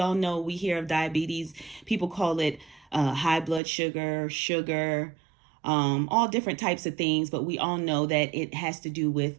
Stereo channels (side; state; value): left; drops out; at 3.6 s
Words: know, we hear of diabetes. People call it high blood sugar, all different types of things. But we all know that it has to do